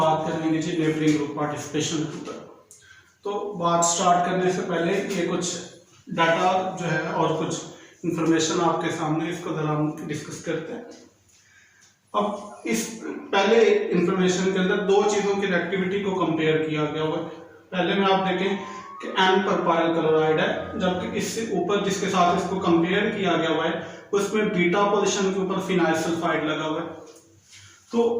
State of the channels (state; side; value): identical; both; correlation 1.00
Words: करेंगे जी नेबरिंग ग्रुप पार्टिसिपेशन के ऊपर। तो बात स्टार्ट करने से पहले ये कुछ डाटा जो है और कुछ इंफॉर्मेशन आपके सामने, इसको जरा हम डिस्कस करते हैं। अब इस पहले इंफॉर्मेशन के अंदर दो चीज़ों की रिएक्टिविटी को कंपेयर किया गया हुआ है। पहले में आप देखें कि N प्रोपाइल क्लोराइड है, जबकि इससे ऊपर जिसके साथ इसको कंपेयर किया गया हुआ है उसमें बीटा पोजीशन के ऊपर फिनाइल सल्फाइड लगा हुआ है। तो